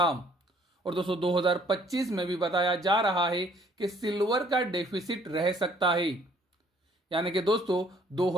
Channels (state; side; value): normal; both; correlation 0.61